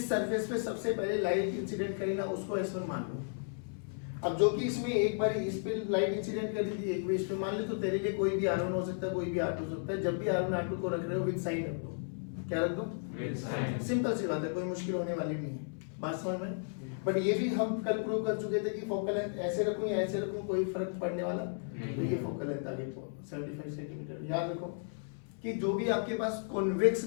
सरफेस पे सबसे पहले लाइट इंसिडेंट करी ना उसको S1 मान लो। अब जो कि इसमें एक बार इस पे लाइट इंसिडेंट कर दी थी एक भी इस पे मान ले, तो तेरे लिए कोई भी R1 हो सकता है कोई भी R2 हो सकता है। जब भी R1 R2 को रख रहे हो विद साइन रख दो, क्या रख दो विद साइन, सिंपल सी बात है, कोई मुश्किल होने वाली नहीं है, बात समझ में। बट ये भी हम कल प्रूव कर चुके थे कि फोकल लेंथ ऐसे रखूं या ऐसे रखूं कोई फर्क पड़ने वाला, तो ये फोकल लेंथ आ गई 75 सेंटीमीटर। याद रखो कि जो भी आपके पास कॉन्वेक्स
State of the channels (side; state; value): right; silent; 55 dB below the other